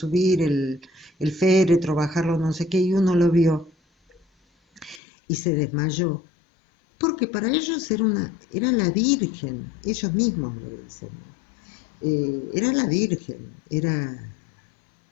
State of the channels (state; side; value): drops out; right; at 5.0 s